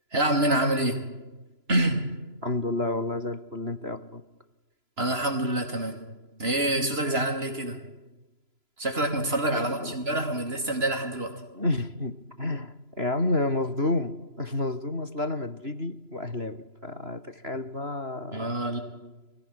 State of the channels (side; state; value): left; late; 3.0 ms